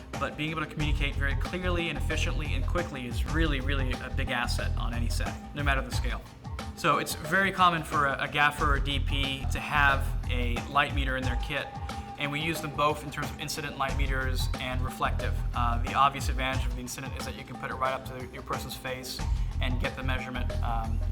But being able to communicate very clearly and efficiently and quickly is really, really a big asset on any set, no matter the scale. So it's very common for a gaffer or DP to have a light meter in their kit, and we use them both in terms of incident light meters and reflective. The obvious advantage of the incident is that you can put it right up to your person's face and get the measurement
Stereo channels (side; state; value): both; identical; correlation 1.00